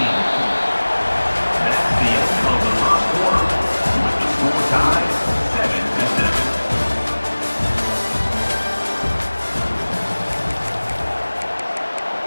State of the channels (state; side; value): inverted; both; correlation -1.00